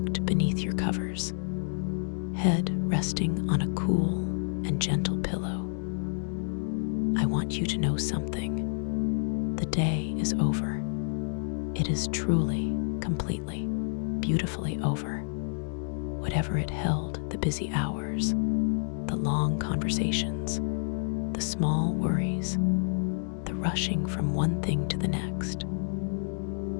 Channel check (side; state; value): right; silent; digital silence